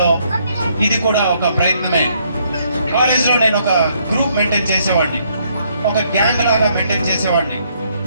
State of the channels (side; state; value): both; inverted; correlation -0.70